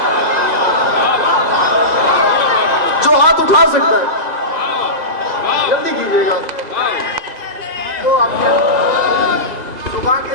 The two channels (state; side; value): late; left; 2.0 ms